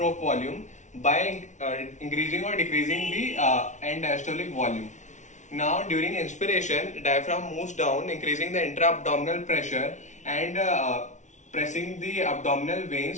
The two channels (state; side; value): late; right; 0.35 ms